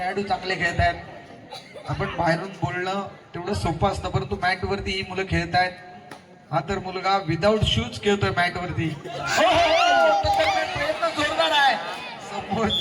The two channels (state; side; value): identical; both; correlation 1.00